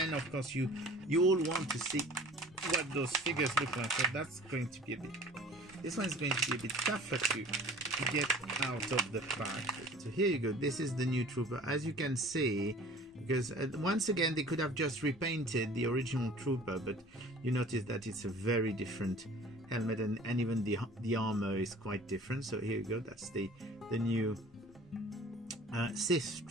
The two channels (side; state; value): both; normal; correlation 0.46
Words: of course you all want to see what those figures look like. So that's going to be a bit. This one is going to be a bit tougher to get out of the pack. So here you go. This is the new trooper, as you can see. Because once again they could have just repainted the original trooper, but you notice that it's a very different helmet, and even the armor is quite different. So here you go, that's the new Sith